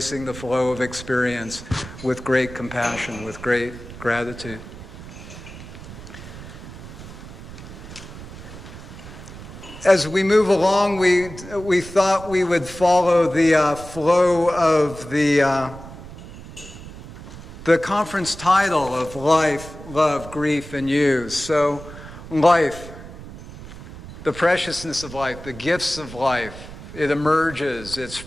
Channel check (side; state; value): right; noise; rumble, 14 dB below the sound